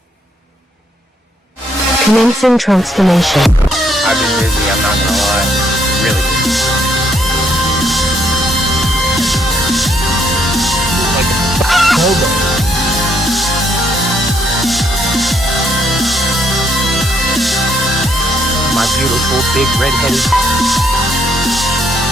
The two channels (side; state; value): both; normal; correlation 0.71